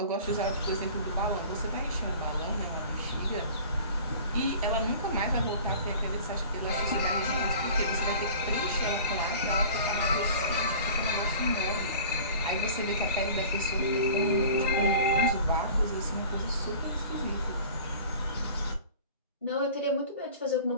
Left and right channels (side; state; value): both; inverted; correlation -0.42